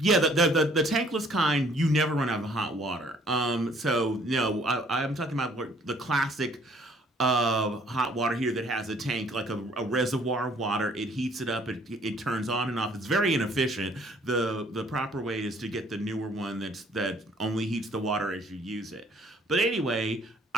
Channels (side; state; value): both; normal; correlation 0.60